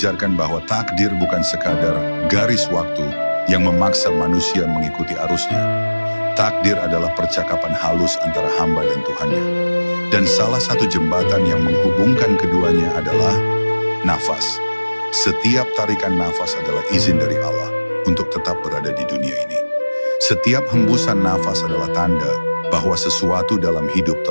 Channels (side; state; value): both; inverted; correlation -1.00